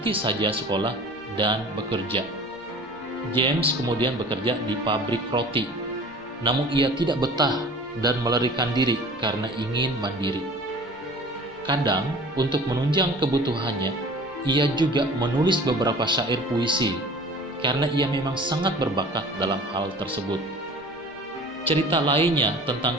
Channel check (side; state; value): left; noise; rumble, 28 dB below the sound